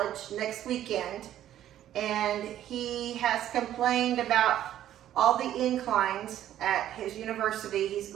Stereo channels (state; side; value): quieter; left; 11.9 dB